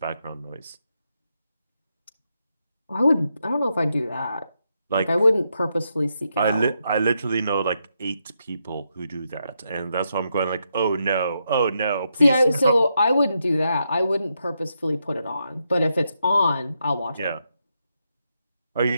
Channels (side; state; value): both; inverted; correlation -0.82